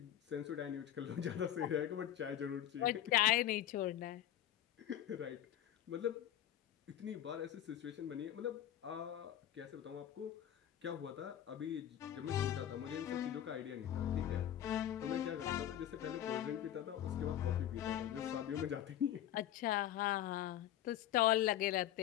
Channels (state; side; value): quieter; right; 11.7 dB